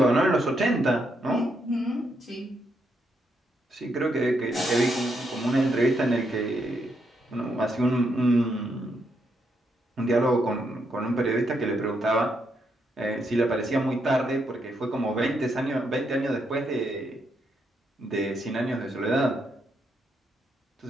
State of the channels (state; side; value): normal; both; correlation 0.78